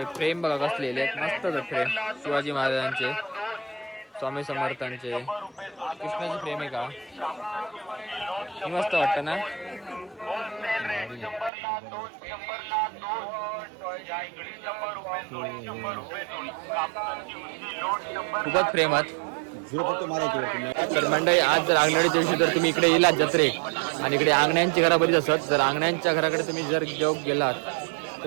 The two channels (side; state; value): left; drops out; at 11.5 s